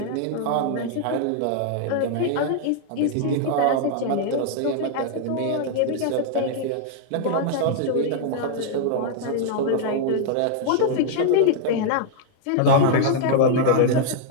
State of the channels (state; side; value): different; both; correlation -0.01